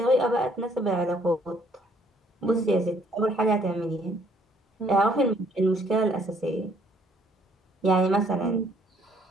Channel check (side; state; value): both; normal; correlation 0.64